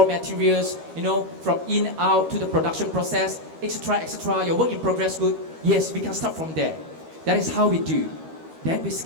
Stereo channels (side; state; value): left; late; 13 ms